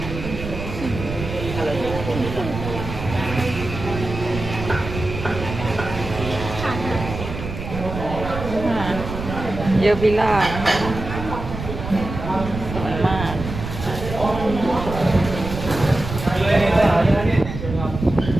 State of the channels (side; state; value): right; noise; rumble, 8 dB below the sound